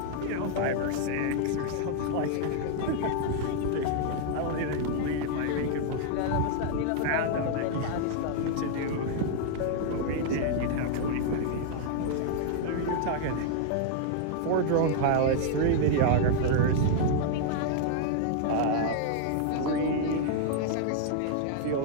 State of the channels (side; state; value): both; different; correlation -0.01